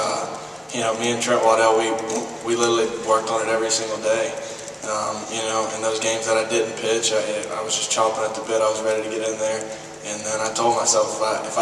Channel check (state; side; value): identical; both; correlation 1.00